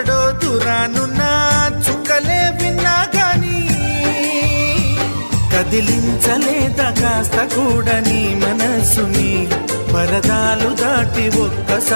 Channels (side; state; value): both; inverted; correlation -1.00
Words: దూరానున్నా చుక్కలే విన్నా గాని కదిలించలేదా కాస్త కూడా నీ మనసుని పరదాలు దాటి